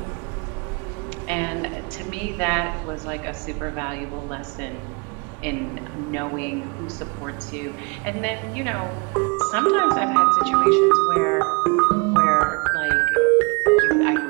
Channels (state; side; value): quieter; left; 30.8 dB